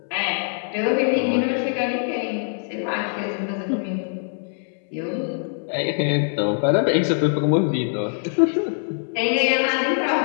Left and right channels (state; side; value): silent; right; 61 dB below the other